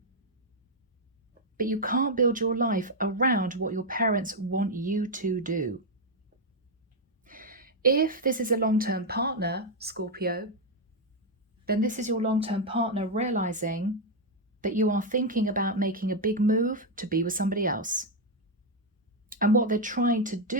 But you can't build your life around what your parents want you to do. If this is a long-term partner, Scorpio, then this is your long-term partner realizing that you are thinking about making a big move to be with somebody else. And what they're trying to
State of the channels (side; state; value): both; normal; correlation 0.01